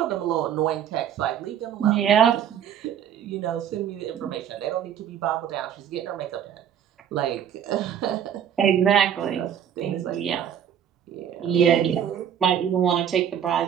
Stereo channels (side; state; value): left; quieter; 9.1 dB